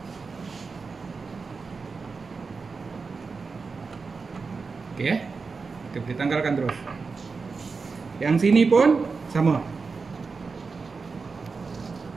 Okey, kita boleh tanggalkan terus. Yang sini pun sama.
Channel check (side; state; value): left; quieter; 4.6 dB